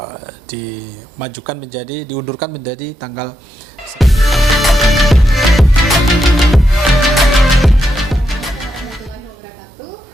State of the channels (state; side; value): normal; both; correlation 0.83